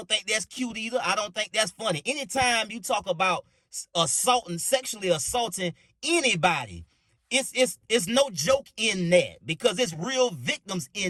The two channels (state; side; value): identical; both; correlation 1.00